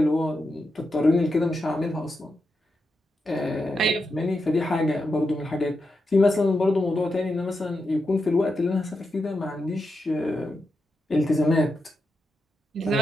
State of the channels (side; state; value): both; normal; correlation 0.87